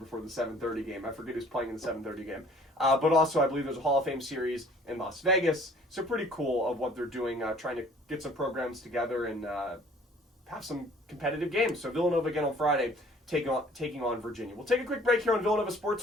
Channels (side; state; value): both; normal; correlation 0.54